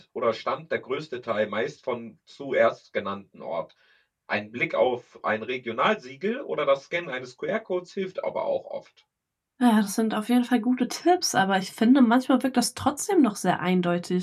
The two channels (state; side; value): identical; both; correlation 1.00